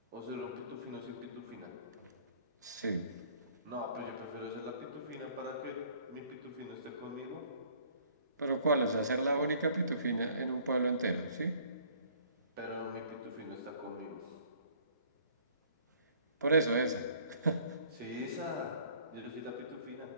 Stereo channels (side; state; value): both; inverted; correlation -0.57